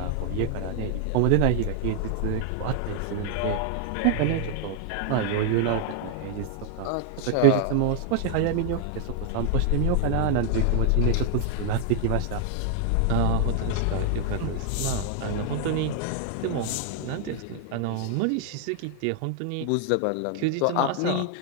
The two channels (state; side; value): different; both; correlation 0.00